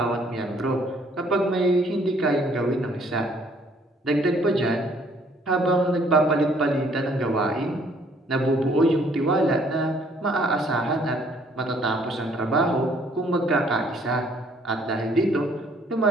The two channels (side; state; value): both; normal; correlation 0.62